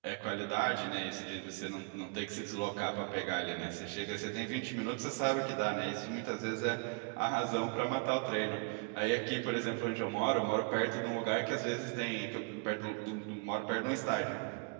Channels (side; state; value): left; quieter; 32.9 dB